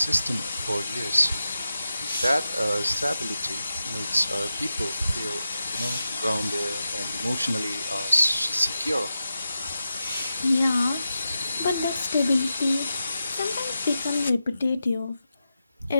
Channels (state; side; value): inverted; both; correlation -0.90